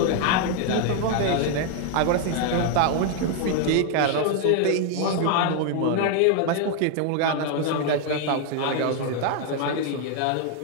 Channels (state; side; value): different; both; correlation 0.00